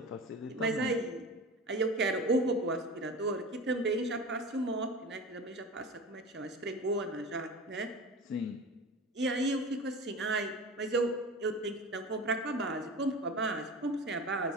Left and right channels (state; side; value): normal; both; correlation 0.32